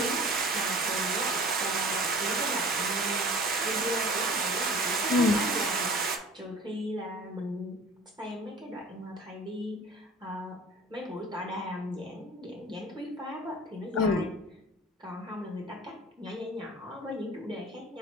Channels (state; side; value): normal; both; correlation 0.43